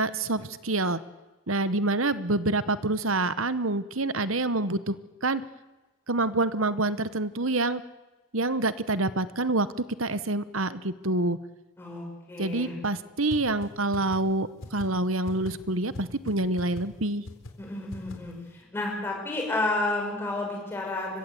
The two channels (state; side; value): normal; both; correlation 0.17